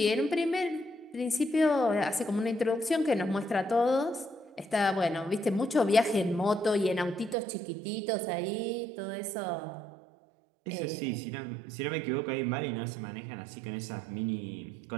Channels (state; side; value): drops out; left; at 7.4 s